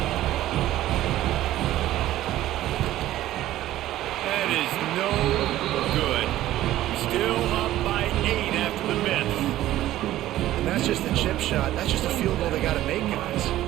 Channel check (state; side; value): quieter; left; 14.4 dB